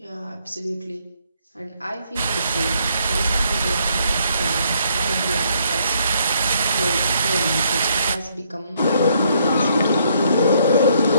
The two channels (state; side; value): inverted; both; correlation -0.69